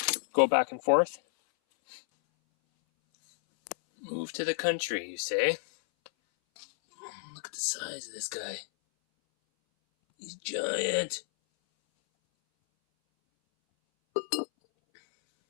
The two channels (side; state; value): right; silent; 57 dB below the other